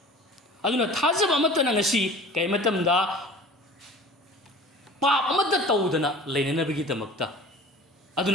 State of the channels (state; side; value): normal; both; correlation 0.42